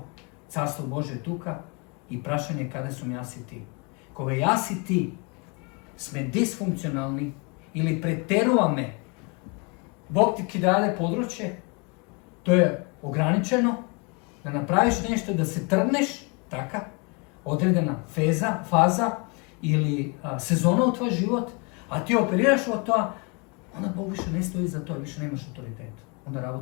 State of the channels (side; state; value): right; quieter; 31.5 dB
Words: carstvo Božje tuka i prašanje kada su jas i ti. Koga jas i ti sme disfunkcionalni ili preteruvame, Bog ti dade područje, to je ograničeno, da napraviš nešto, da se trgneš, taka, odredena faza ili sezona u tvoj život, a ti operiraš od toga, onda Bog više ne stoji za to, više nemaš autoritet. Onda